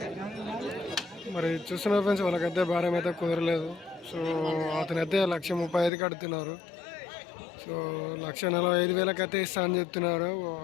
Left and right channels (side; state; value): right; drops out; at 5.9 s